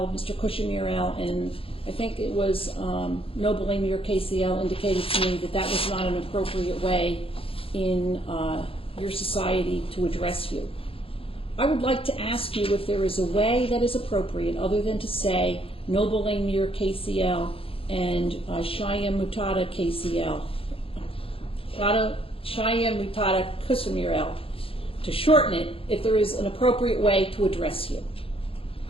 Mr. Kushimir L, and I think it was Noble Amir KCL indicated to me that that was not an appropriate way in your society to address you. I would like to ask you if there is a way that is appropriate other than to say Noble Amir KCL and Cheyenne Mutada KCL, Cheyenne Mutada Kushimir L, to shorten it, if there is an appropriate way to address you.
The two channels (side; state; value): right; late; 0.27 ms